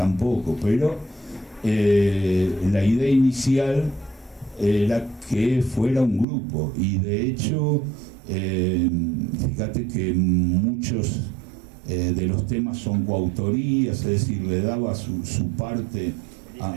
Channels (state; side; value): drops out; left; at 6.2 s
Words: poco, pero la idea inicial era que fuera un grupo, y de hecho fíjate que muchos de los temas son coautorías, es decir, le daba su parte